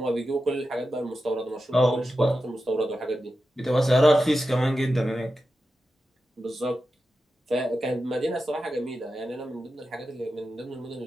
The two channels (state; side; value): normal; both; correlation 0.91